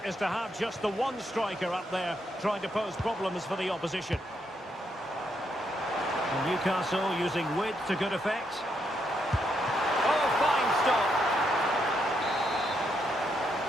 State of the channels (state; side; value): normal; both; correlation 0.78